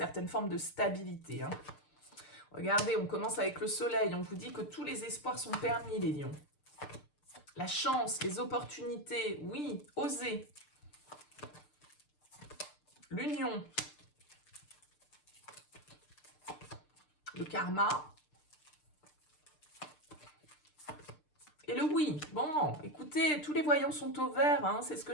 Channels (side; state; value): right; late; 6.7 ms